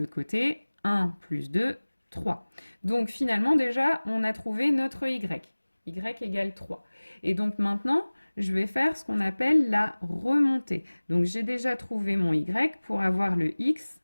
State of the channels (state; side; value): inverted; both; correlation -1.00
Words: côté, 1 plus 2, 3. Donc finalement déjà, on a trouvé notre y. Y égale 3. Et donc maintenant, je vais faire ce qu'on appelle la remontée. Donc j'ai déjà trouvé mon y. Pour avoir le x,